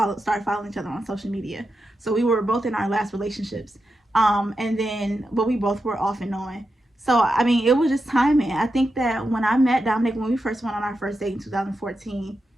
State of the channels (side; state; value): both; normal; correlation 0.88